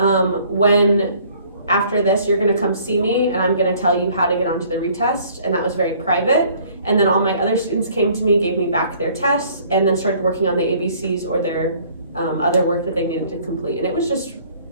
after this, you're gonna come see me and I'm gonna tell you how to get onto the retest. And that was very private. And then all my other students came to me, gave me back their tests, and then started working on the ABCs or their other work that they needed to complete. And it was just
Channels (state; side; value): inverted; both; correlation -0.57